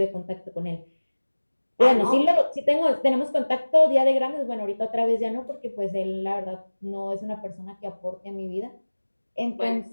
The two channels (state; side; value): inverted; both; correlation -1.00